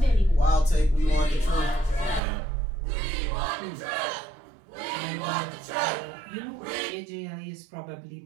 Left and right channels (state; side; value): drops out; left; at 2.2 s